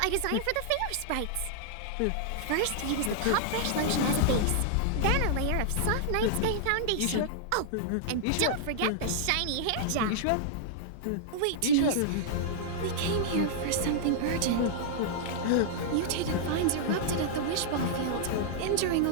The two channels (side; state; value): both; different; correlation -0.01